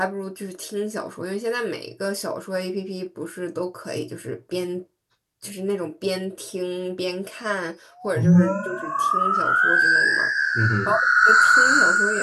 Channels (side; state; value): both; identical; correlation 1.00